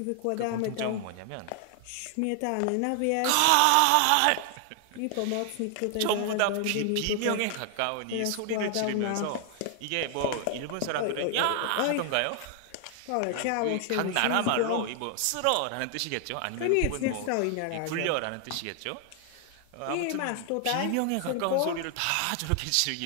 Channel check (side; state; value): both; different; correlation 0.00